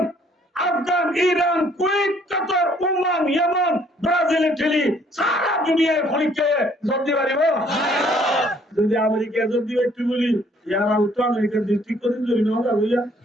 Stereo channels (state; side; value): normal; both; correlation 0.62